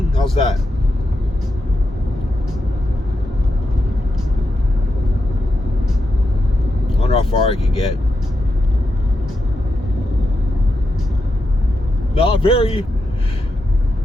How's that? I wonder how far I can get. Not very.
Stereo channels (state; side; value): normal; both; correlation 0.86